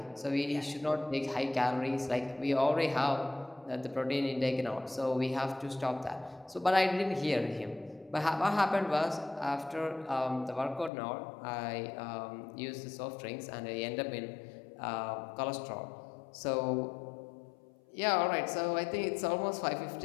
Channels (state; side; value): drops out; right; at 10.9 s